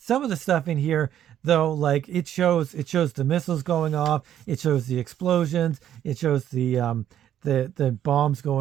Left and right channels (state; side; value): quieter; left; 10.8 dB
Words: of the stuff in here, though, like it shows the missiles going off, it shows the explosions, it shows the bombs